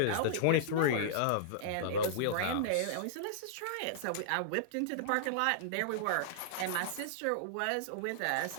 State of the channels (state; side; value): different; both; correlation -0.02